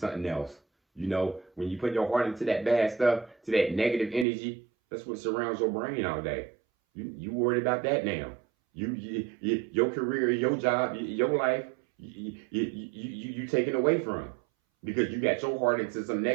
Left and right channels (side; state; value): left; drops out; at 4.2 s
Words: else. You know, when you put your heart into that bad stuff, to that negative energy, that's what surrounds your brain all day. You worried about that now. Your career, your job, your life, you taken away from because you got your heart into some